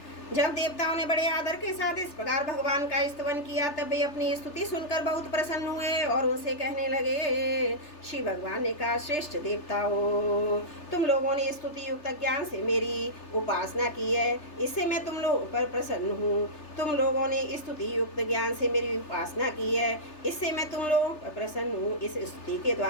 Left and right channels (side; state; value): right; late; 3.3 ms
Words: जब देवताओं ने बड़े आदर के साथ इस प्रकार भगवान का स्तवन किया, तब वे अपनी स्तुति सुनकर बहुत प्रसन्न हुए और उनसे कहने लगे। श्री भगवान ने कहा, श्रेष्ठ देवताओं, तुम लोगों ने स्तुति युक्त ज्ञान से मेरी उपासना की है, इससे मैं तुम लोगों पर प्रसन्न हूँ। तुम लोगों ने स्तुति युक्त ज्ञान से मेरी उपासना की है, इससे मैं तुम लोगों पर प्रसन्न हूँ। इस स्तुति के